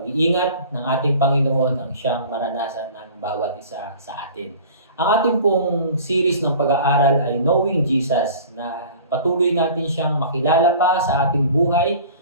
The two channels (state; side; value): inverted; both; correlation -0.43